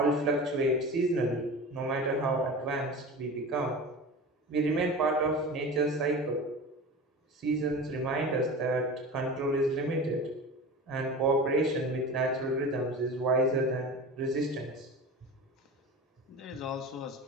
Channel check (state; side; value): normal; both; correlation 0.32